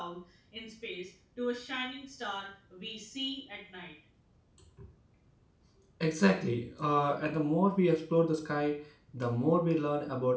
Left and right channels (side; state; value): both; identical; correlation 1.00